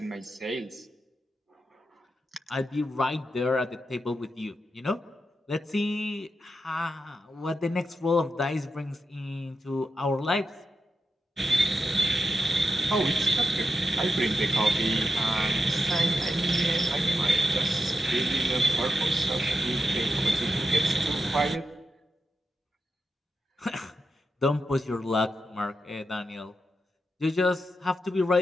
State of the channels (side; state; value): both; normal; correlation 0.88